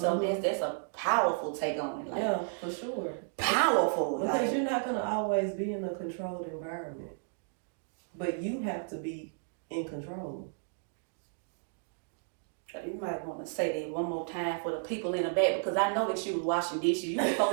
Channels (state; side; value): silent; left; digital silence